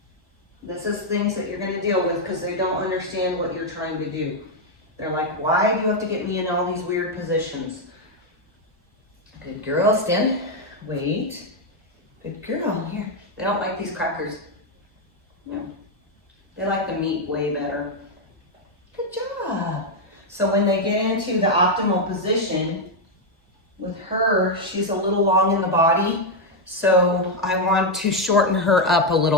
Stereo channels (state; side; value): normal; both; correlation 0.02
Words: This is things that you're going to deal with because they don't understand what you're trying to do. They're like, why do you have to get me in all these weird positions? Good girl, stand. Wait. Good girl, here. They don't like these crackers. No. They like the meat way better. Good job. So when they get into the optimal position, with her, she's a little long in the body, so I want to shorten her up a